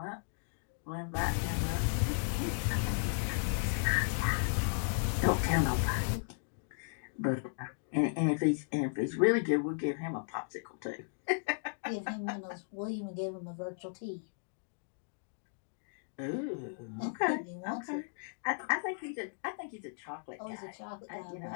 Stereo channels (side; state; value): right; silent; digital silence